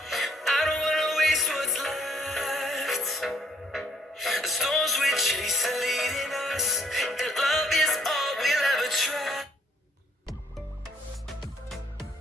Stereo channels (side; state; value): both; normal; correlation 0.62